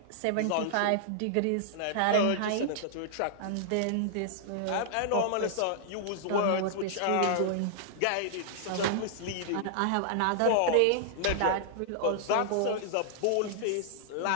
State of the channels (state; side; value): different; both; correlation -0.01